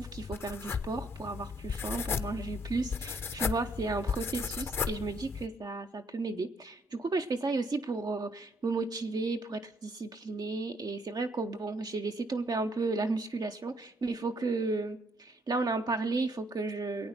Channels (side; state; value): both; normal; correlation 0.68